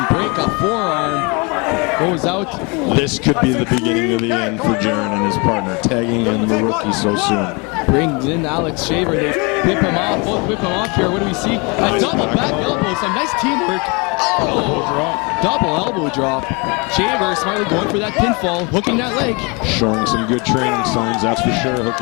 break a forearm. Goes out. This could be the beginning of the end for Jaron and his partner, tagging in the rookie so soon. Brings in Alex Shaver. They whip him off. Both whip him off here. What do we see? A double back elbow. Some nice teamwork. Oh! Double elbow drop. Shaver smartly going for that pinfall, hooking that leg. Showing some good training signs, that's for sure.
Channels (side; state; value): right; quieter; 29.7 dB